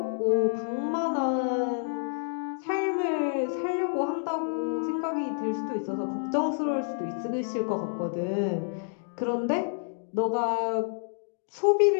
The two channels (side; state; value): right; silent; digital silence